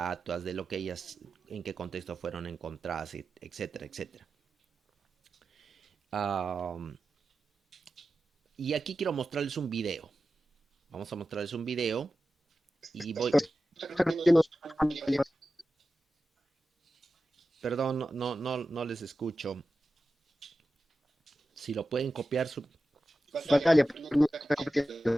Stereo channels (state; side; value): normal; both; correlation 0.93